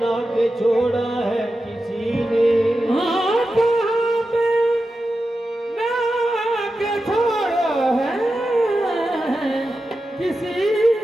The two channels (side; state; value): both; normal; correlation 0.91